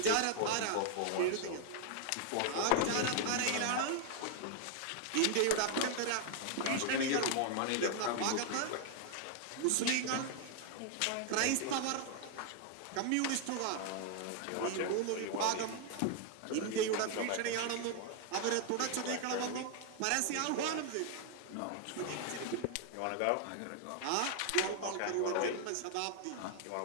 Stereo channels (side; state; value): both; different; correlation 0.00